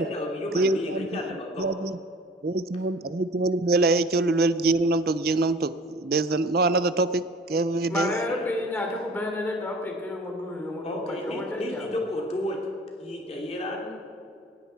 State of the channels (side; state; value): both; normal; correlation 0.45